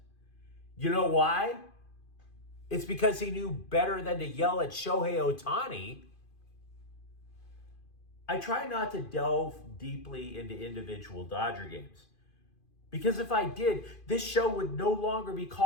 You know why? It's because he knew better than to yell at Shohei Ohtani. I try not to delve deeply into individual Dodger games. Because if I did, this show would no longer be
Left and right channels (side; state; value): right; late; 2.5 ms